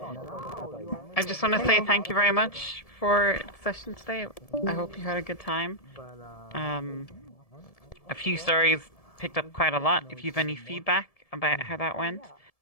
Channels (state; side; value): late; right; 1.7 ms